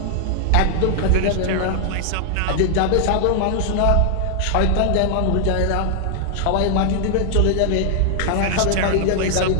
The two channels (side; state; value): both; different; correlation 0.00